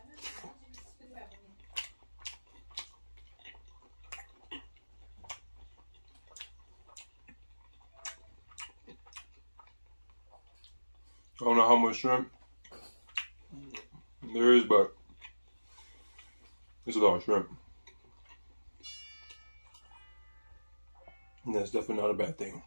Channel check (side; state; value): both; inverted; correlation -1.00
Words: I don't know how much shrimp there is, but it's a lot of shrimp. And that's definitely not a bad thing.